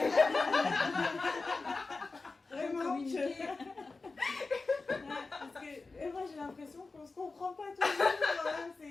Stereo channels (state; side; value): quieter; right; 3.8 dB